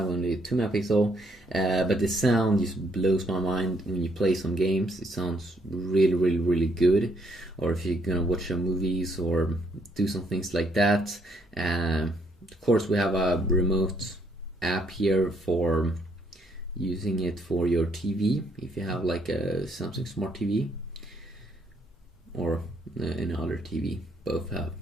only 2 megapixel. But the sound just blows my mind when you play some games. It sounds really good. Or if you're gonna watch some movies or do some things like that. Of course, we have a remote app here for using it for your TV. If you have like a Samsung Smart TV or any other TV. Both have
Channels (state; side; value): normal; both; correlation 0.70